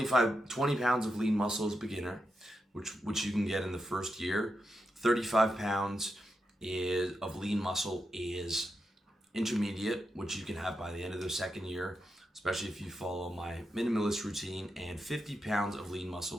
pounds of lean muscle is beginner, which you can get in the first year. 35 pounds of lean muscle is intermediate, which you can have by the end of the second year, especially if you follow my minimalist routine. And 50 pounds of lean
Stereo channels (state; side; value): normal; both; correlation 0.86